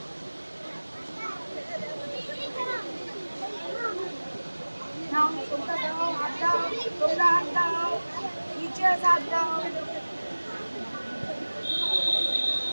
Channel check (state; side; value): inverted; both; correlation -1.00